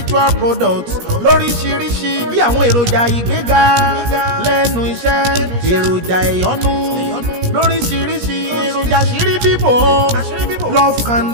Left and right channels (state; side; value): late; left; 17 ms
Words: products lóríṣiríṣi bí àwọn èròjà ìgbéga lẹ́nu iṣẹ́ èròjà ìyọ́nú lóríṣiríṣi èròjà àṣírí bíbò love